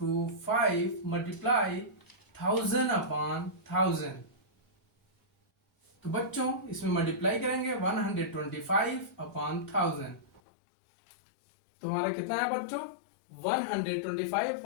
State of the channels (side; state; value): right; drops out; at 10.4 s